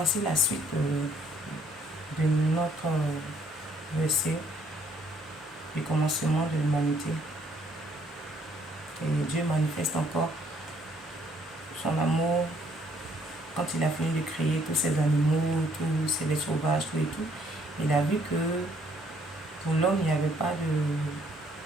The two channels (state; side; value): normal; both; correlation 0.65